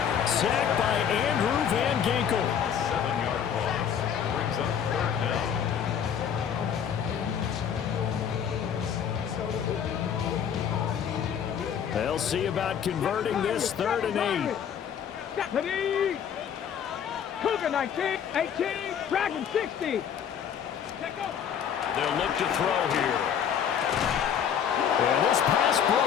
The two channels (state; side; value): quieter; right; 8.4 dB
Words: Sacked by Andrew Van Ginkel. 7-yard loss brings up 3rd down. They'll see about converting this 3rd and 8. Deputy. Cougar 19, 18, Dragon 60. They'll look to throw here. And this pass